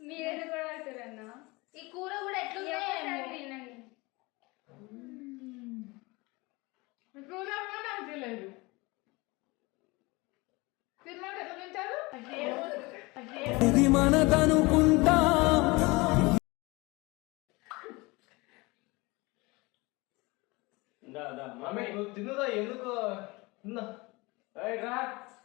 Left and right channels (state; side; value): quieter; right; 24.2 dB